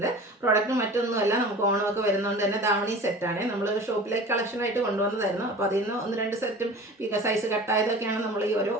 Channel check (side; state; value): both; normal; correlation 0.39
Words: പ്രോഡക്റ്റ് മറ്റൊന്നുമല്ല, നമുക്ക് ഓണമൊക്കെ വരുന്നതുകൊണ്ട് തന്നെ ധാവണി സെറ്റാണ്. നമ്മൾ ഷോപ്പിലേക്ക് കളക്ഷനായിട്ട് കൊണ്ടുവന്നതായിരുന്നു. അപ്പോൾ അതിൽ നിന്ന് 1-2 സെറ്റും സൈസ് കട്ടായതൊക്കെയാണ് നമ്മൾ ഈ ഒരു